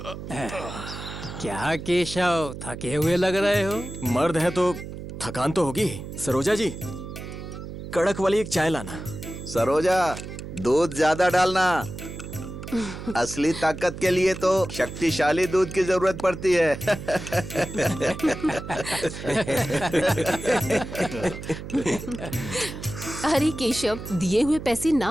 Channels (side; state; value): right; noise; hum, 10 dB below the sound